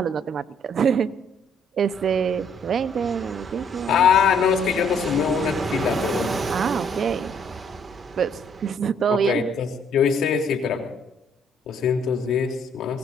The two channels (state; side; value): normal; both; correlation 0.65